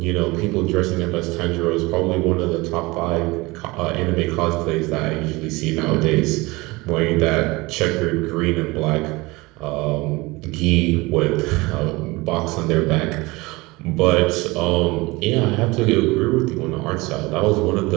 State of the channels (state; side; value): quieter; left; 22.8 dB